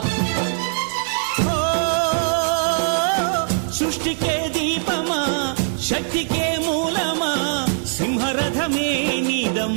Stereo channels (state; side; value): silent; left; digital silence